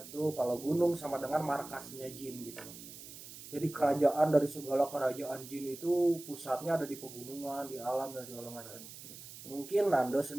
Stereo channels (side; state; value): right; noise; hiss, 14 dB below the sound